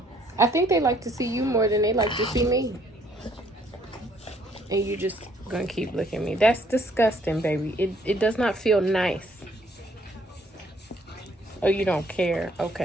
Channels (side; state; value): both; normal; correlation 0.64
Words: I think they like to see you more than they like to see me. And you just gonna keep looking at me. That's disgusting, baby. It does not feel nice. Oh, you don't care.